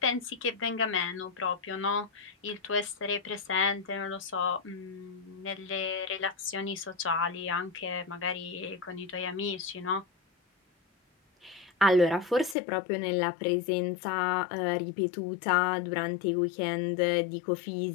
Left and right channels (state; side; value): drops out; right; at 12.6 s